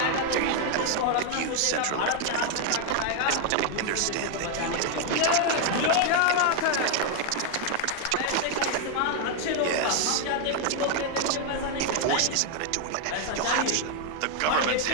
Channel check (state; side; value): different; both; correlation 0.00